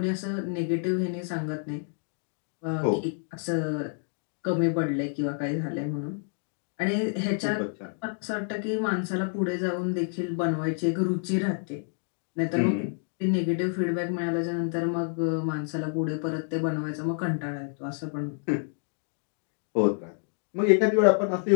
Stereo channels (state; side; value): silent; right; 59 dB below the other